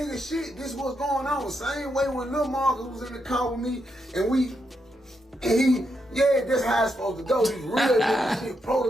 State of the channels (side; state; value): both; normal; correlation 0.82